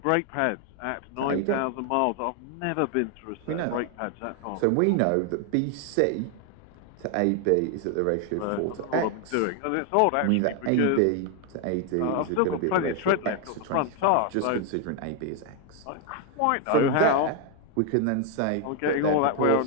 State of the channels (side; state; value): both; different; correlation 0.00